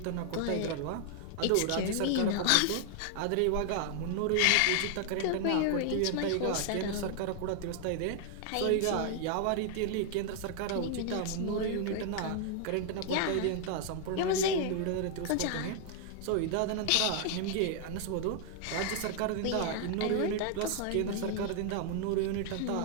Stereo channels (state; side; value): different; both; correlation 0.00